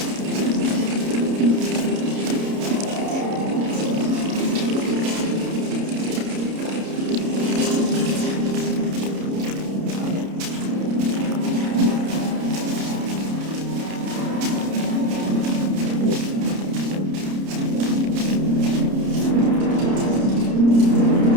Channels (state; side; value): late; left; 30 ms